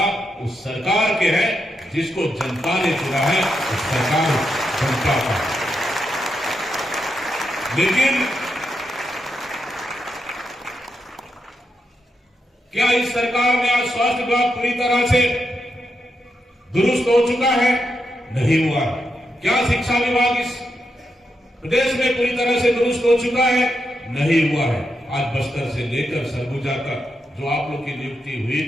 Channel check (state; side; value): normal; both; correlation 0.84